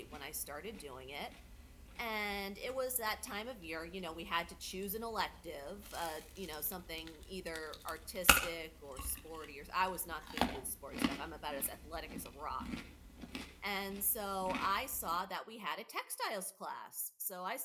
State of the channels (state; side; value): identical; both; correlation 1.00